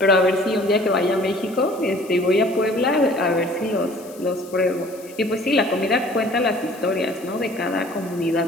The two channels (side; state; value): left; noise; hiss, 22 dB below the sound